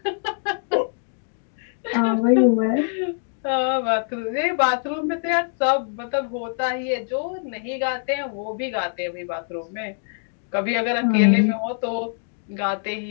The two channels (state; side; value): silent; right; 63 dB below the other